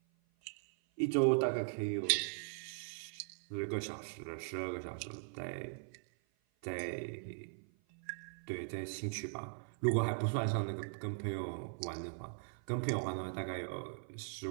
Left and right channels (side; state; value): left; silent; 51 dB below the other